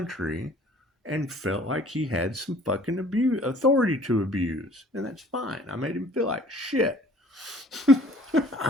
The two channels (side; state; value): both; normal; correlation 0.52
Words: and felt like he had some fucking authority to abuse. And that's fine. I made him feel like shit.